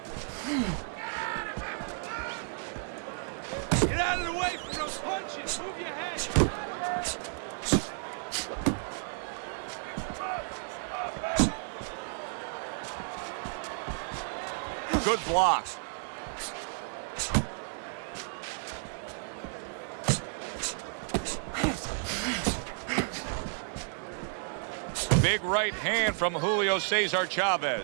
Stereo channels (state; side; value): silent; left; digital silence